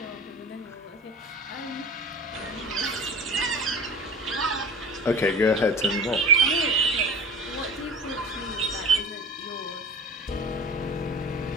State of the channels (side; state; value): both; normal; correlation 0.37